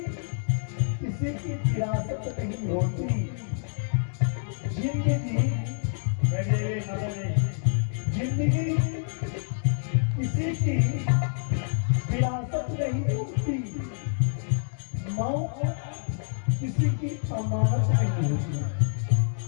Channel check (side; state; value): right; silent; 60 dB below the other